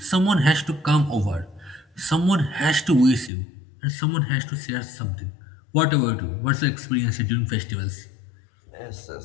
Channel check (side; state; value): right; drops out; at 3.3 s